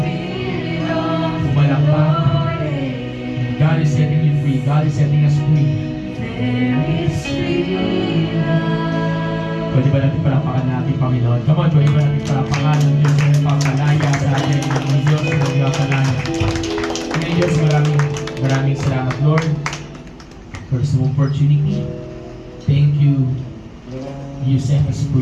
Spirit of the Umalakpak. Lord is, God is setting you free. God is setting us free. Pwede ba natin palakpakan natin, Panginoon? Come on, pwede ba natin palakpakan ng Diyos na nagpapalaya sa atin ng Diyos na nagpapalaya. Kaya Diyos, maraming salamat, Lord, for this opportunity. Thank you. You set us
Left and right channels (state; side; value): identical; both; correlation 1.00